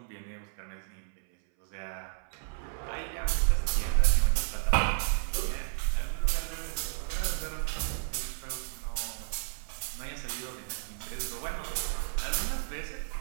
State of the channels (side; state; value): left; silent; 56 dB below the other